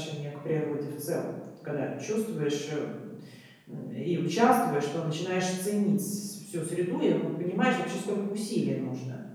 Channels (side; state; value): both; identical; correlation 1.00